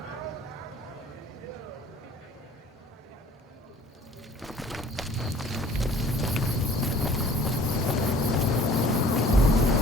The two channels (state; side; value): normal; both; correlation 0.51